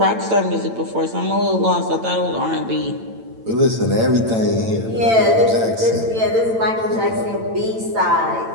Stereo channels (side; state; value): left; late; 8.9 ms